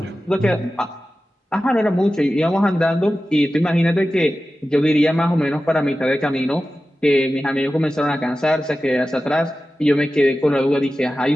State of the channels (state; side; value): normal; both; correlation 0.94